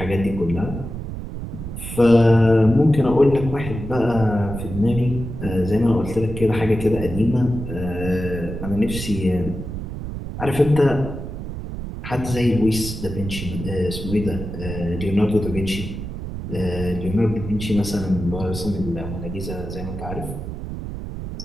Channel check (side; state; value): right; noise; rumble, 7 dB below the sound